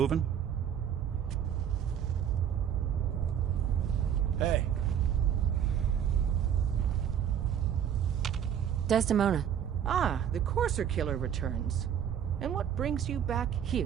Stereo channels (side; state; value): left; quieter; 9.1 dB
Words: Hey. Desdemona. Ah, the Courser Killer returns. And what brings you back here?